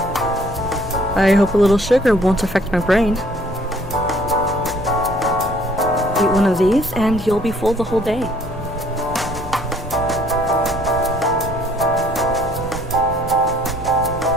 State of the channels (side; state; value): both; normal; correlation 0.60